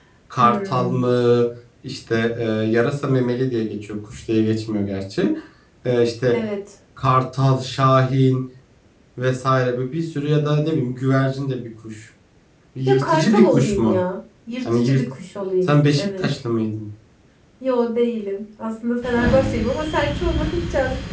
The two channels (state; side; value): identical; both; correlation 1.00